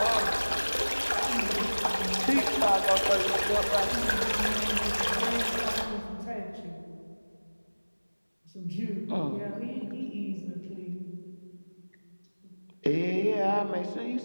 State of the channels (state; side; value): inverted; both; correlation -1.00